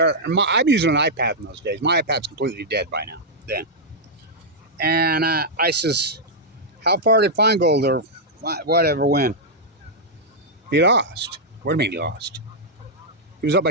And I'm using an iPad in those days. My iPad's completely dead by now, then. And I says, how far did Feingold or whatever win? He lost. What do you mean he lost? He was up by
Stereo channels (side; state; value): both; normal; correlation -0.07